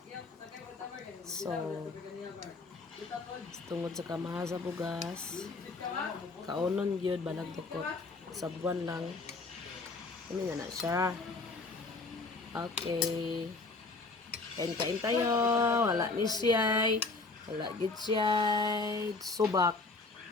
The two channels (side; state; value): right; quieter; 3.6 dB